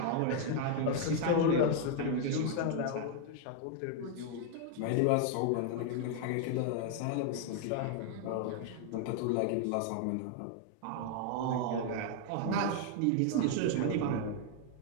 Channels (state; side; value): different; both; correlation 0.00